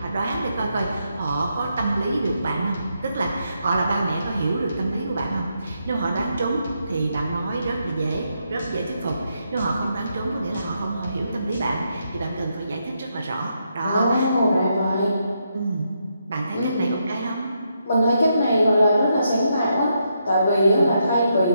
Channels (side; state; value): both; inverted; correlation -0.80